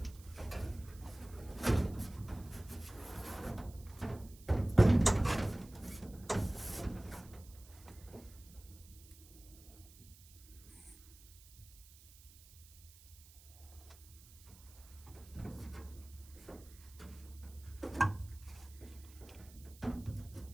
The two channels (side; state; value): right; noise; hiss, 21 dB below the sound